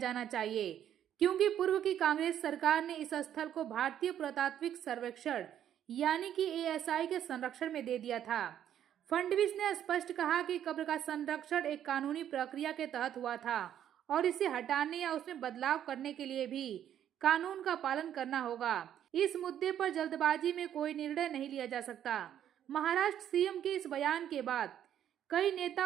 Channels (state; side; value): quieter; left; 10.3 dB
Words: चाहिए, क्योंकि पूर्व की कांग्रेस सरकार ने इस स्थल को भारतीय पुरातात्विक सर्वेक्षण यानी कि एएसआई के संरक्षण में दे दिया था। फडणवीस ने स्पष्ट कहा कि कब्र का संरक्षण एक कानूनी प्रक्रिया के तहत हुआ था और इसे हटाने या उसमें बदलाव करने के लिए भी कानून का पालन करना होगा। इस मुद्दे पर जल्दबाजी में कोई निर्णय नहीं लिया जा सकता। महाराष्ट्र सीएम के इस बयान के बाद कई